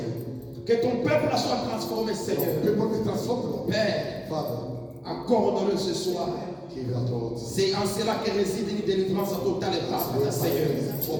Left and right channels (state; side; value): identical; both; correlation 1.00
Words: Que ton peuple soit transformé, Seigneur. Père, accorde-le ce soir. C'est en cela que réside une délivrance totale et parfaite, Seigneur.